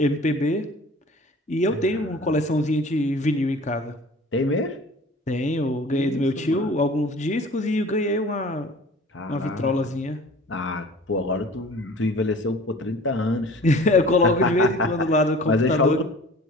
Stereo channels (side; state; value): both; normal; correlation 0.44